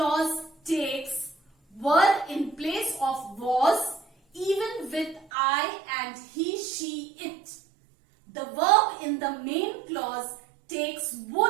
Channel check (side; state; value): left; drops out; at 5.2 s